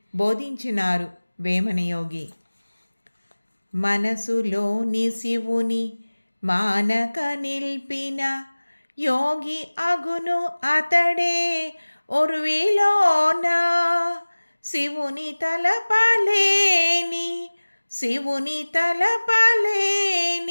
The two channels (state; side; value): inverted; both; correlation -1.00